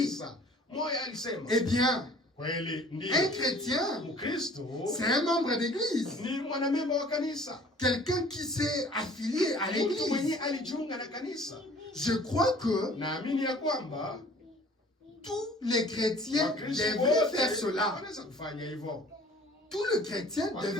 Moya alisema. Eh bien, Kweli ndio. un chrétien, Mkristo c'est un membre d'église. ni mwanamemba wa kanisa. Quelqu'un qui s'est affilié à Mtu mwenye l'église. alijiunga na kanisa. Je crois que Naamini ya kwamba tous les chrétiens Wakristo devraient wote faire cela. wanaweza kufanya hivyo. Tout le chrétien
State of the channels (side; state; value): both; normal; correlation 0.51